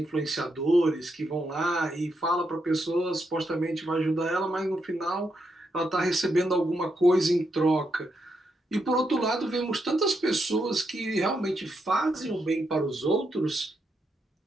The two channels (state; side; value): normal; both; correlation 0.81